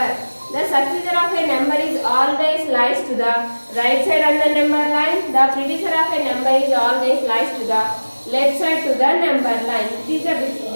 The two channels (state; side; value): inverted; both; correlation -1.00